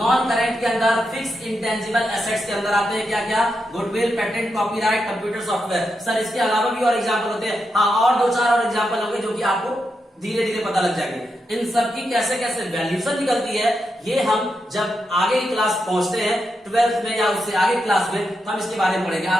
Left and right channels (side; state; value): both; normal; correlation 0.85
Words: करेंट के अंदर फिक्स इंटेंजिबल एसेट्स के अंदर आते हैं क्या क्या? Goodwill, patent, copyright, computer software. Sir इसके अलावा भी और एग्जांपल होते हैं? हाँ, और 2-4 और एग्जांपल होंगे जो कि आपको धीरे धीरे पता लग जाएंगे। इन सब की कैसे कैसे वैल्यूशन निकलती है ये हम जब आगे की क्लास पहुंचते हैं 12th में या उससे आगे क्लास में, तो हम इसके बारे में पढ़ेंगे।